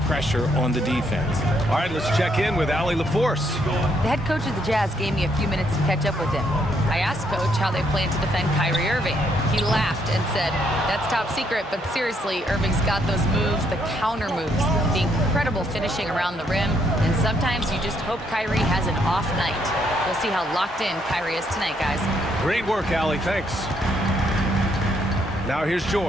pressure on the defense. All right, let's check in with Allie LaForce. The head coach of the Jazz gave me a few minutes to catch up with him. I asked Coach how they plan to defend Kyrie Irving. He laughed and said, "That's top secret, but seriously, Irving's got those moves, the counter moves, the incredible finishing around the rim, and sometimes you just hope Kyrie has an off night." We'll see how locked in Kyrie is tonight, guys. Great work, Allie. Thanks. Now here's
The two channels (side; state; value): both; normal; correlation 0.72